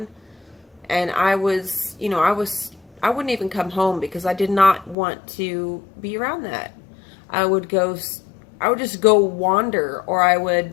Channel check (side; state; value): right; drops out; at 5.0 s